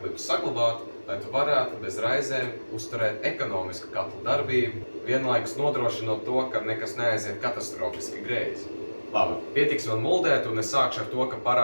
saglabāt, lai tu varētu bez raizēm uzturēt ekonomisku katlu darbību, vienlaikus nodrošinot to, ka nekas neaiziet katastrofiski greizi. Labi, pietiks man muldēt, un es sākšu ar to, ka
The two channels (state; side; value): inverted; both; correlation -1.00